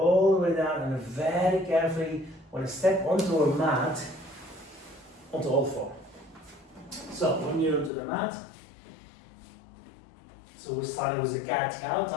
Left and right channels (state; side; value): drops out; right; at 7.9 s